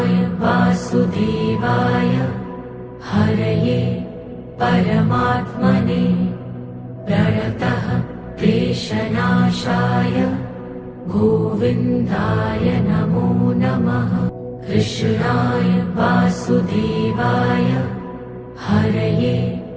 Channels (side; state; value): both; identical; correlation 1.00